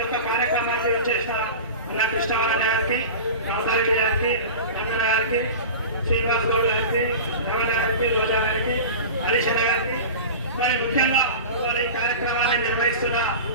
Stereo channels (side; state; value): both; inverted; correlation -0.32